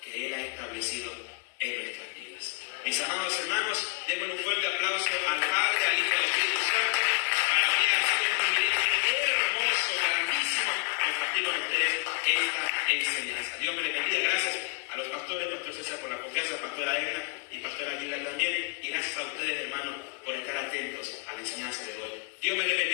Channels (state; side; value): quieter; right; 33.6 dB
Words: que Él ha establecido en nuestras vidas. Mis amados hermanos, démosle un fuerte aplauso al Padre, al Hijo y al Espíritu Santo. Para mí ha sido un privilegio hermoso, grandísimo, compartir con ustedes esta enseñanza. Dios me les bendiga. Gracias a los pastores, Pastor César por la confianza, Pastora Edna y Pastora Aguilar también. Y gracias a ustedes, hermanos, por estar atentos a la enseñanza de hoy. Dios me les